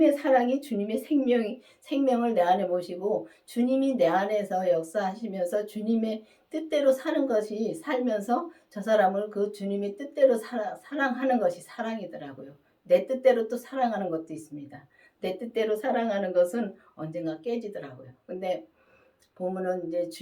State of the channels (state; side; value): identical; both; correlation 1.00